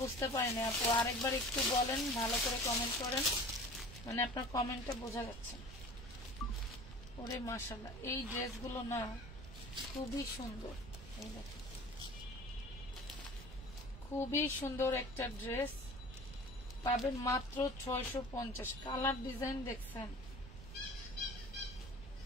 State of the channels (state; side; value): noise; right; rumble, 13 dB below the sound